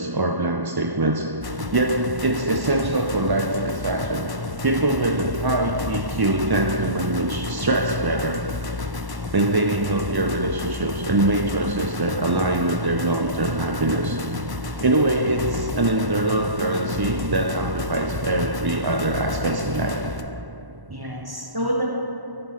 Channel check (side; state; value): left; late; 1.1 ms